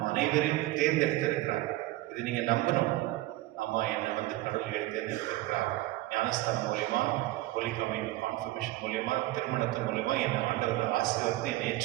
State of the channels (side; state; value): left; quieter; 17.7 dB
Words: அனைவரையும் தேர்ந்தெடுத்திருக்கிறார். இது நீங்க நம்பணும். ஆமா, என்னை வந்து கடவுள் தேர்ந்தெடுத்திருக்கிறார். ஞானஸ்தானம் மூலியமா, ஹோலி கான்ஃபர்மேஷன் மூலியமா, திருமணத்தின் மூலியமா என்னை ஆண்டவர் ஆசீர்வதித்து என்னை